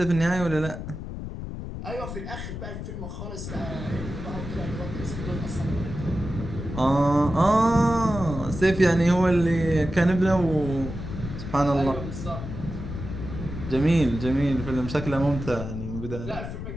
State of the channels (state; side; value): noise; left; rumble, 8 dB below the sound